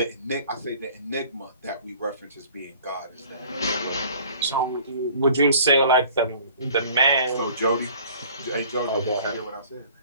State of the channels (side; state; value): both; inverted; correlation -0.51